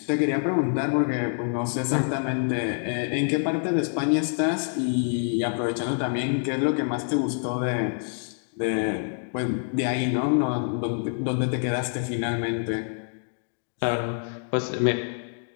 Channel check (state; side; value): silent; right; 61 dB below the other